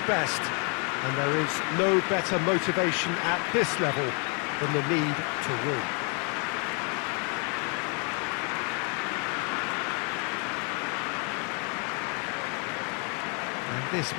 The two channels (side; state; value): right; quieter; 36.5 dB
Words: And there is no better motivation at this level than the need to win. And this